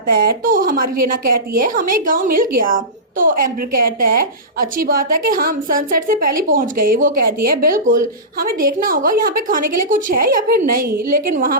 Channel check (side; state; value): both; normal; correlation -0.19